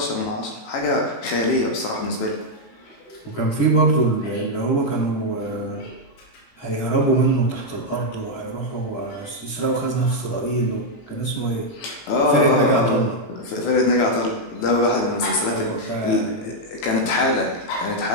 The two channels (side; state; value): right; late; 18 ms